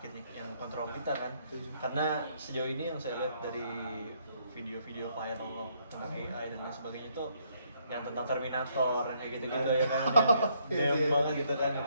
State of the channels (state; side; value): inverted; both; correlation -0.71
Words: yang kontrol kita kan. Karena sejauh ini yang saya lihat dari video-video viral tentang AI dan lain sebagainya itu yang tentang Terminator yang kayak gitu-gitu ya kan, yang dem banget gitu kan, yang